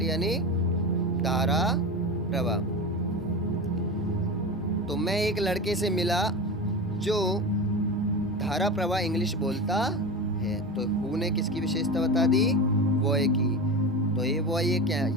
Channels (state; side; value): normal; both; correlation 0.25